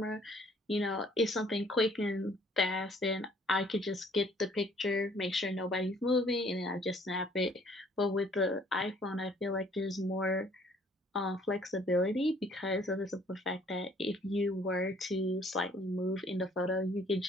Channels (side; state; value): both; normal; correlation 0.59